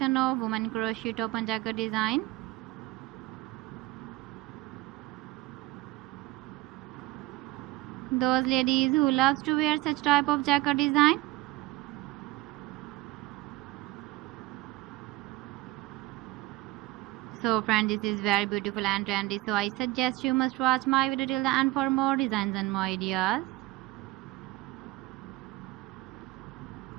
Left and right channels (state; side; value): quieter; left; 18.8 dB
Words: of women crochet top and jacket design. Those ladies who loves to wear such type of jacket design. So friends, this is very beautiful and trendy, so I suggest you must watch my video till the end for more designs and more ideas.